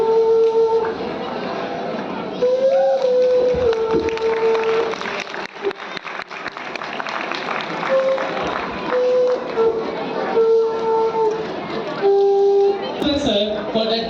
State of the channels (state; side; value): identical; both; correlation 1.00